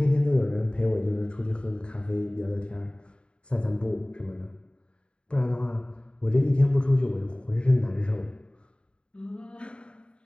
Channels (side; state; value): right; late; 0.053 ms